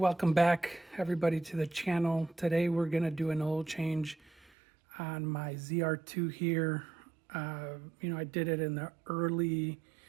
back everybody to the channel. Today we're going to do an oil change on my ZR2 here. I did it in the early,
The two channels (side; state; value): left; drops out; at 4.5 s